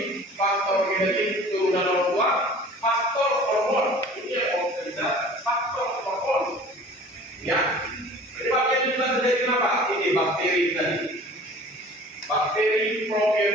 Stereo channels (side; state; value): both; normal; correlation 0.45